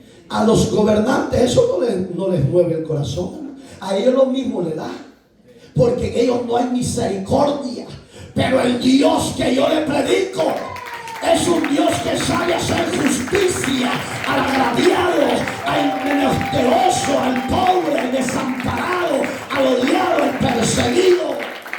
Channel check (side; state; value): both; identical; correlation 1.00